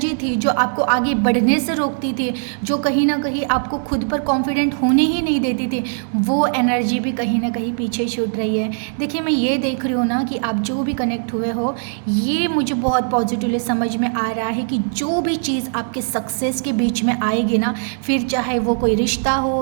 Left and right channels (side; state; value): left; silent; digital silence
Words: थी जो आपको आगे बढ़ने से रोकती थी, जो कहीं ना कहीं आपको खुद पर कॉन्फिडेंट होने ही नहीं देती थी, वो एनर्जी भी कहीं ना कहीं पीछे छूट रही है। देखिए मैं ये देख रही हूँ ना कि आप जो भी कनेक्ट हुए हो, ये मुझे बहुत पॉजिटिवली समझ में आ रहा है कि जो भी चीज़ आपके सक्सेस के बीच में आएगी ना, फिर चाहे वो कोई रिश्ता